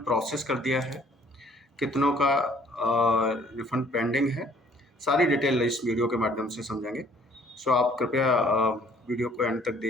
प्रोसेस कर दिया है, कितनों का रिफंड पेंडिंग है, सारी डिटेल इस वीडियो के माध्यम से समझेंगे। सो आप कृपया वीडियो को एंड तक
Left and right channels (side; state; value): both; normal; correlation 0.58